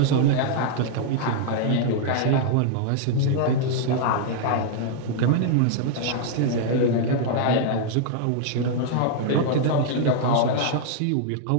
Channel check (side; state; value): both; different; correlation -0.01